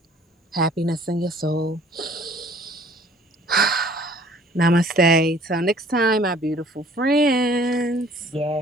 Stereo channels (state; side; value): normal; both; correlation 0.55